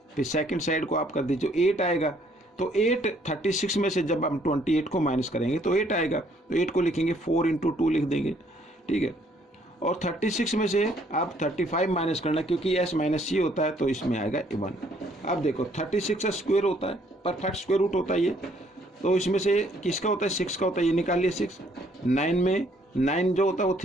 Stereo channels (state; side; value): normal; both; correlation 0.65